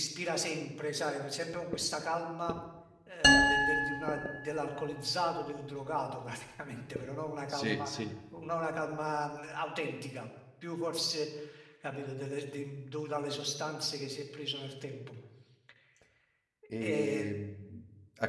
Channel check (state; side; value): identical; both; correlation 1.00